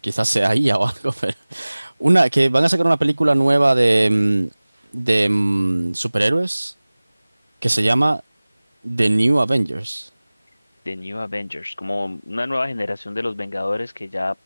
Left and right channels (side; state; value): both; inverted; correlation -1.00